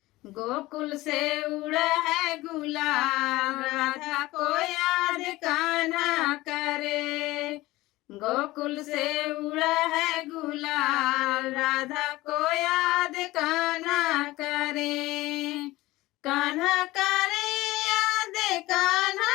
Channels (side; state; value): right; quieter; 18.7 dB